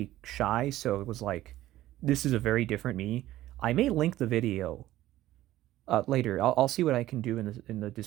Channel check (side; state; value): left; quieter; 14.9 dB